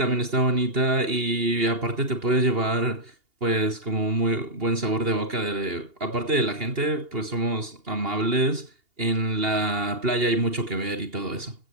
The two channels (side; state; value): left; late; 2.8 ms